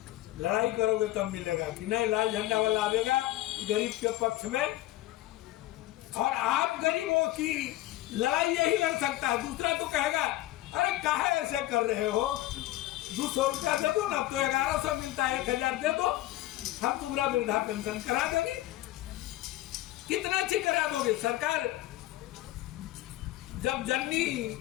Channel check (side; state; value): right; quieter; 16.2 dB